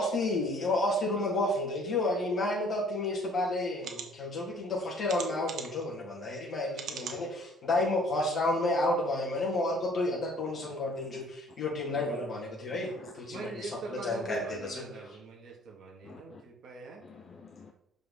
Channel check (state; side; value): normal; both; correlation 0.55